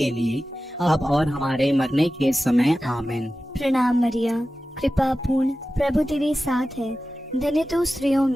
लिए अब और हमारे मरने के समय। आमीन। प्रणाम मरिया, कृपा पूर्ण, प्रभु तेरे साथ है, धन्य तू स्त्रियों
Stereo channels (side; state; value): both; normal; correlation 0.94